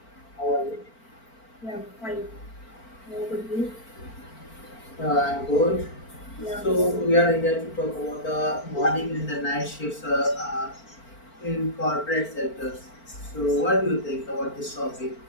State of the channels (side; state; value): right; late; 4.4 ms